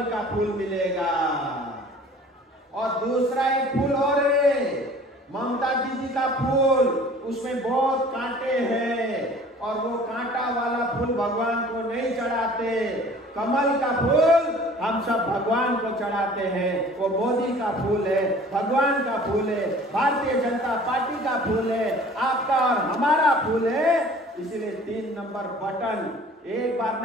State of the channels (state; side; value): normal; both; correlation 0.48